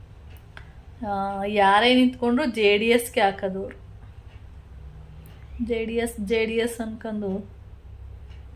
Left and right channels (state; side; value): identical; both; correlation 1.00